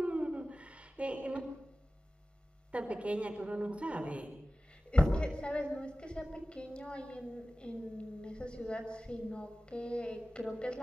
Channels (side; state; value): both; normal; correlation 0.96